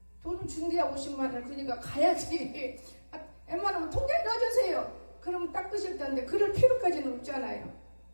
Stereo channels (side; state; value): both; inverted; correlation -1.00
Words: 돈은 준대야 50만 원. 그러니까 가야지. 웬만하면 통장에 넣어주세요. 그러면 닦으실 텐데 그럴 필요까지는 없잖아요.